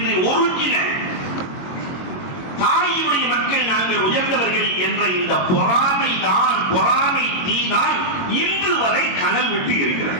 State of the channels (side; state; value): right; late; 22 ms